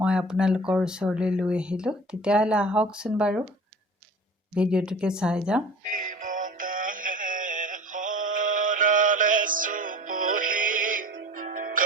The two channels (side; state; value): both; normal; correlation 0.40